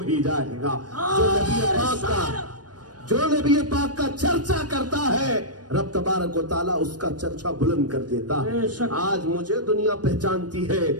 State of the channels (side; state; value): left; late; 0.69 ms